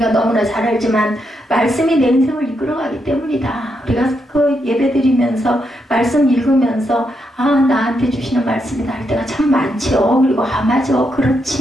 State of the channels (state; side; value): normal; both; correlation 0.81